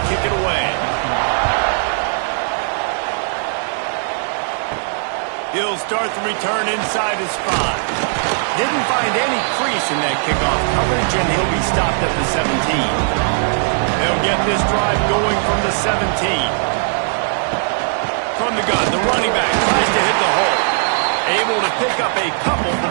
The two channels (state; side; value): silent; left; digital silence